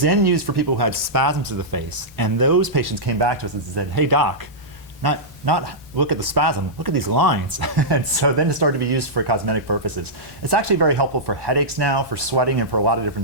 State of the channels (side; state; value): both; normal; correlation -0.12